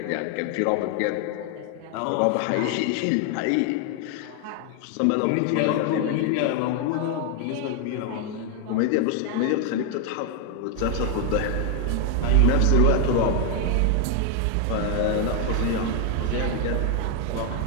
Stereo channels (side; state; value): both; different; correlation 0.00